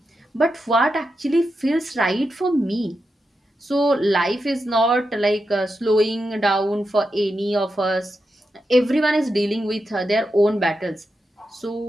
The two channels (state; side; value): normal; both; correlation 0.88